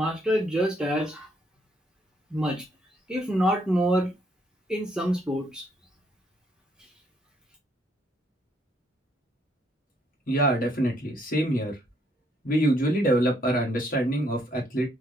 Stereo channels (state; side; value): normal; both; correlation 0.70